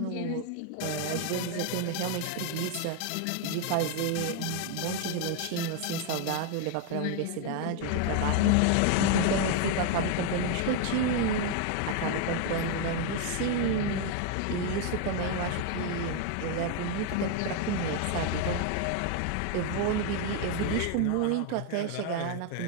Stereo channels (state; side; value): different; both; correlation 0.01